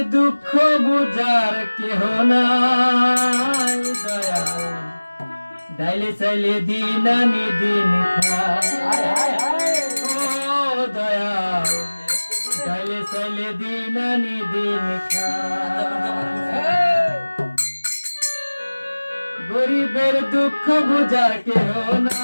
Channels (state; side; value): inverted; both; correlation -1.00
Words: দুঃখ বুঝার কেহ নাই দয়া ডাইলে চাইলে দিন আনি দিন ও দয়া ডাইলে চাইলে দিন আনি দিন গরিবের দুঃখ বুঝার কেহ